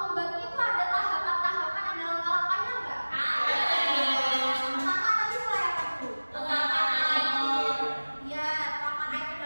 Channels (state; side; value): inverted; both; correlation -1.00